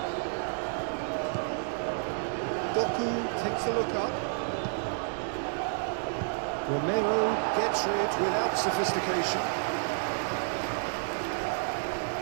Doku takes a look up. Romero gets rid without sophistication.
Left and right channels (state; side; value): silent; left; digital silence